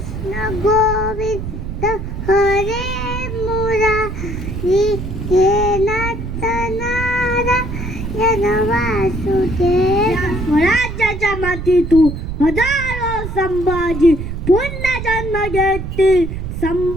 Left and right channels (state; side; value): noise; right; rumble, 6 dB below the sound